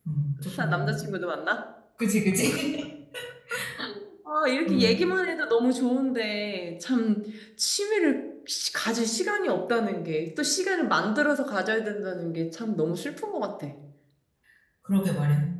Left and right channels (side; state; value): both; identical; correlation 1.00